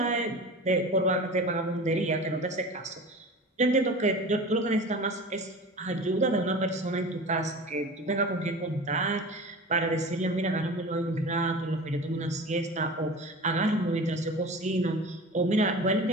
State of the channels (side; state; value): both; normal; correlation 0.35